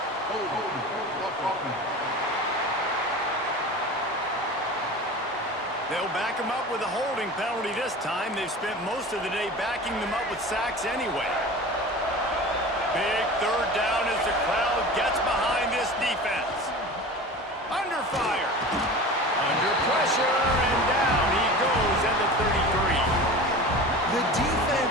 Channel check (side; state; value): both; normal; correlation 0.35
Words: They'll back him up with a holding penalty this time. They've spent most of the day backing them up with sacks anyway. Big 3rd down as the crowd gets behind this defense. Under fire. Under pressure, and down he goes at the 33. The